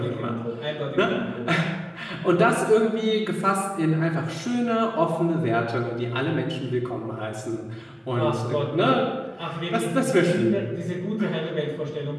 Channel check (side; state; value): both; identical; correlation 1.00